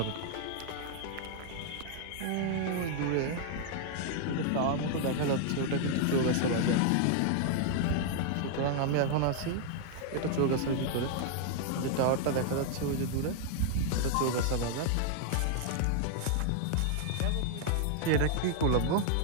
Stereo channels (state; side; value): different; both; correlation 0.00